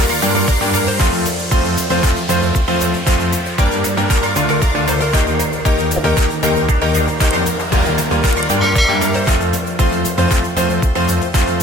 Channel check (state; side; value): normal; both; correlation 0.59